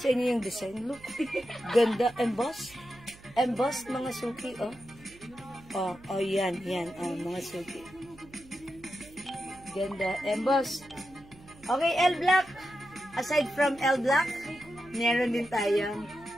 sa inyo yung design. Look. Ganda. Embossed. Embossed, mga suki, oh. Oh, yan, mga suki. Ganda. Embossed. Okay, L black. Aside from L black, meron din tayong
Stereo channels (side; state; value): right; noise; hum, 22 dB below the sound